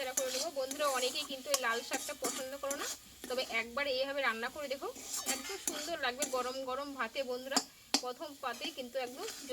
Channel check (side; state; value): both; identical; correlation 1.00